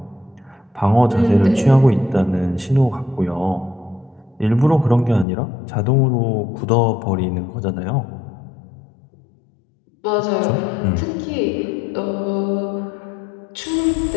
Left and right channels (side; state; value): right; drops out; at 5.2 s